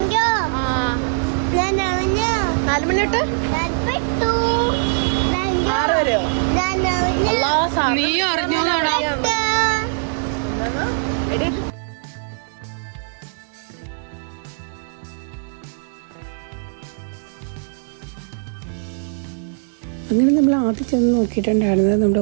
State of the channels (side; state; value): left; silent; digital silence